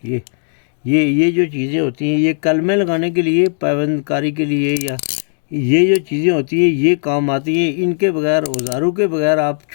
ये जो चीज़ें होती हैं, ये कलमे लगाने के लिए, पाबंदकारी के लिए, या ये जो चीज़ें होती हैं ये काम आती हैं। इनके बगैर, औजारों के बगैर आप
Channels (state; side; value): silent; right; digital silence